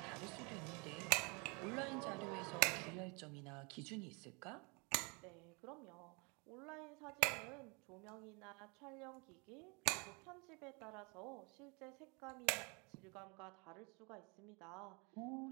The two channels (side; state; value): left; quieter; 31.0 dB